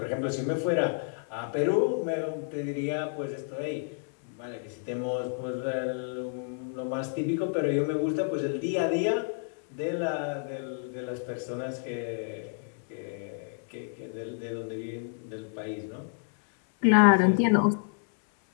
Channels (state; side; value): silent; right; 58 dB below the other